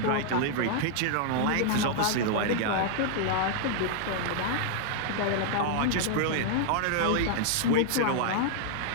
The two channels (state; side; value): different; both; correlation 0.00